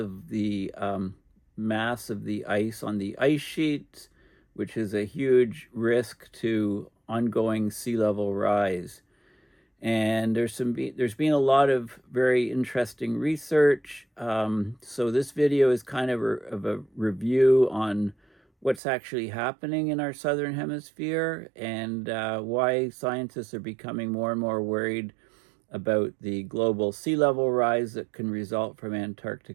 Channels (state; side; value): drops out; left; at 18.8 s